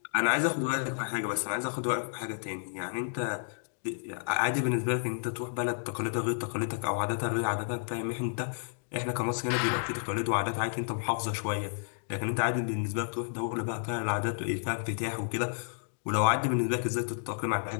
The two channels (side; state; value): right; silent; digital silence